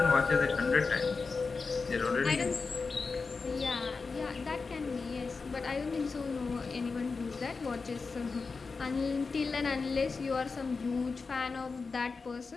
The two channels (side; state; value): right; quieter; 4.5 dB